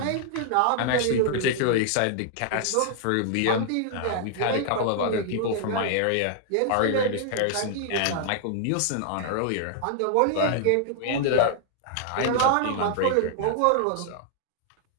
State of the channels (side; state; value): both; different; correlation -0.01